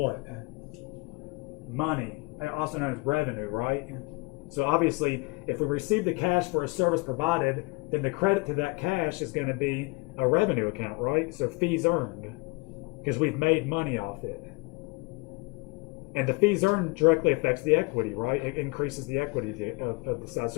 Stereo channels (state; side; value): quieter; right; 27.4 dB